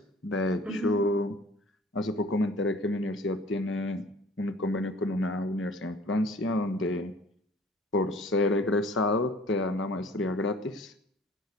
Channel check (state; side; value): normal; both; correlation 0.50